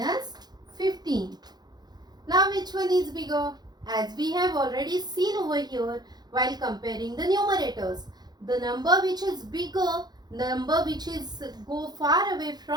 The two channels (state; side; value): late; left; 0.20 ms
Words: 15. Now which one is bigger? As we have already seen over here while comparing the numerators, the number which is bigger, number which is go far away